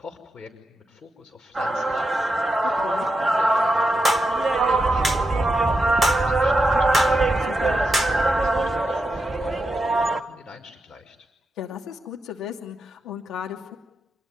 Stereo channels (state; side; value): normal; both; correlation 0.86